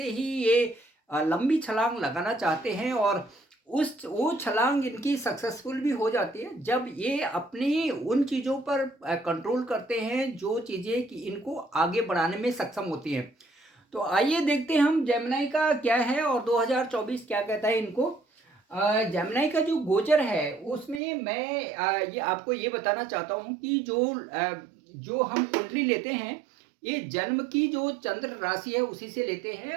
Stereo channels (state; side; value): drops out; left; at 21.0 s